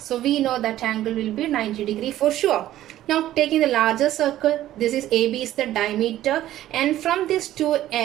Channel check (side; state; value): left; quieter; 13.6 dB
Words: we know that angle will be 90 degree for sure. Now taking the larger circle, this is AB is the diameter, and from these two